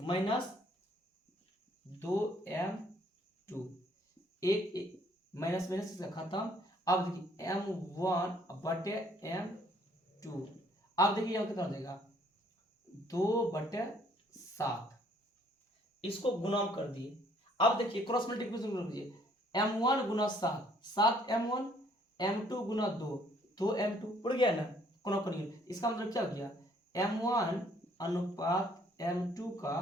-2m2, एक माइनस माइनस से खत्म। अब देखिए m1 बटे m2, अब देखिए यहाँ कितना हो जाएगा 2/7, इसको गुना कर दिए। अब देखिए क्रॉस मल्टीप्लिकेशन कर दीजिए, m1 गुना 7, 7m1, m2 गुना 2, 2m2 उड़ गया ना, कोना कोनी, इसका मतलब क्या हो गया, m1 अनुपात m2 का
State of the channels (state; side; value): normal; both; correlation 0.63